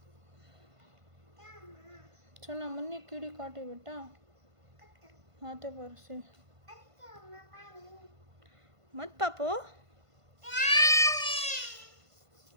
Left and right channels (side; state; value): left; late; 1.5 ms